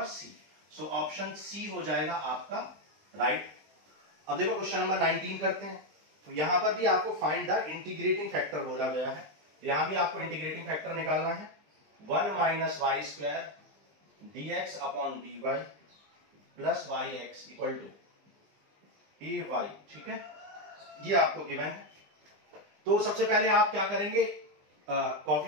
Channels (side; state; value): left; late; 20 ms